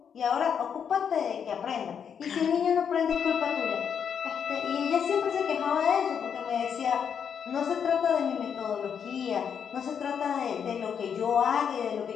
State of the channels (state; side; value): quieter; right; 7.5 dB